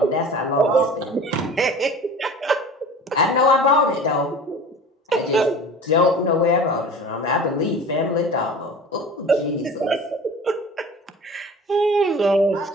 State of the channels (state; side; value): normal; both; correlation 0.40